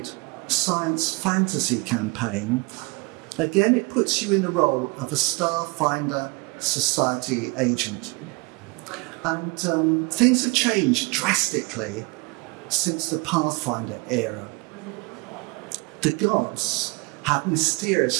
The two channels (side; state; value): left; quieter; 28.1 dB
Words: science fantasy campaign. Again, it puts you in the role of a Starfinder Society agent. And things have changed drastically since the Pathfinder era. The gods have